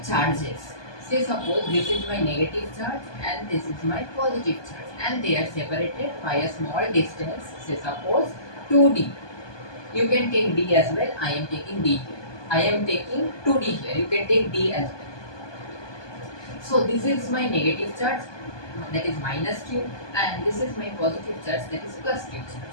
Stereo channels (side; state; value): right; late; 1.2 ms